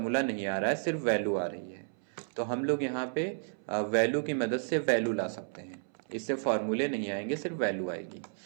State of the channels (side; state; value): left; silent; 56 dB below the other